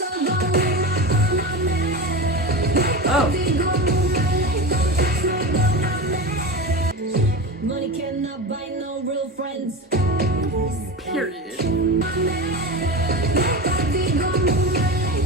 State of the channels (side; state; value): both; normal; correlation 0.25